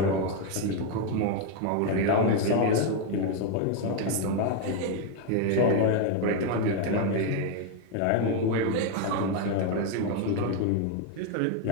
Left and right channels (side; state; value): both; different; correlation 0.01